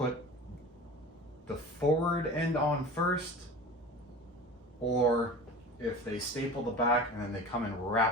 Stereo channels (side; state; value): both; normal; correlation 0.36